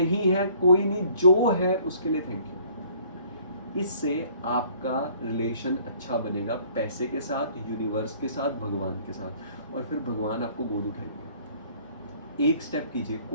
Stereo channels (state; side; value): inverted; both; correlation -0.57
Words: है कोई नहीं, जो है उसके लिए थैंक यू। इससे आपका रिलेशन अच्छा बनेगा पैसे के साथ, यूनिवर्स के साथ, भगवान के साथ, और फिर भगवान आपको गोद उठाएंगे। एक स्टेप कीजिए,